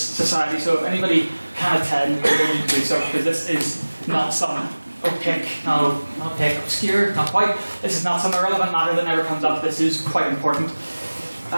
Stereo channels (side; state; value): both; inverted; correlation -1.00